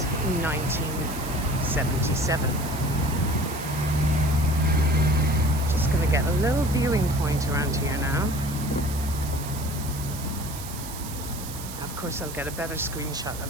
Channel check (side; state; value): right; noise; hiss, 12 dB below the sound